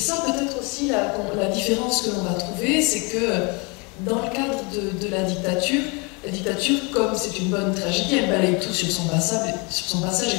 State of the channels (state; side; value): quieter; right; 30.4 dB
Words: peut-être aussi la différence que l'on va trouver, c'est que dans le cadre de la dictature, comme c'est une bonne tragédie, elle balaye tout sur son passage